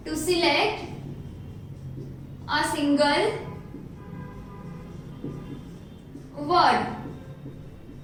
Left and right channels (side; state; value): both; identical; correlation 1.00